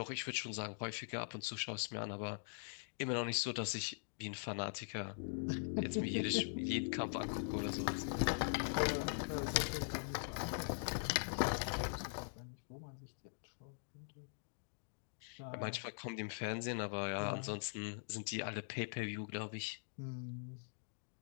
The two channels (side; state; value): right; silent; digital silence